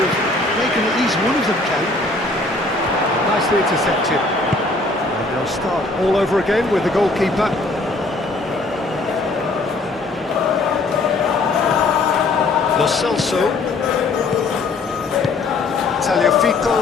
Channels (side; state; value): right; quieter; 3.2 dB